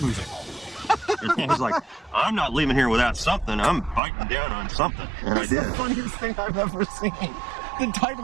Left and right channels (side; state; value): left; drops out; at 4.0 s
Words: moving. I was like, I'm not leaving here without something. I'm biting down on something. And I It's did. the funniest thing I've ever seen. The